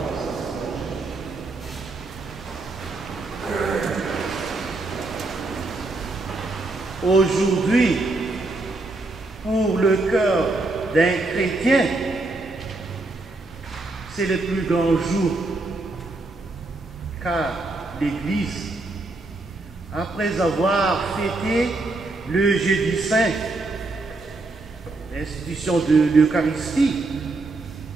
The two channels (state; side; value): quieter; left; 3.2 dB